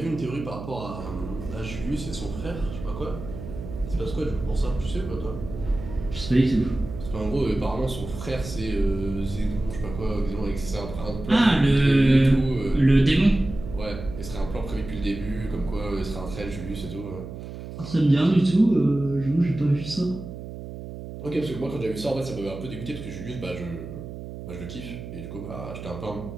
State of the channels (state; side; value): noise; right; hum, 10 dB below the sound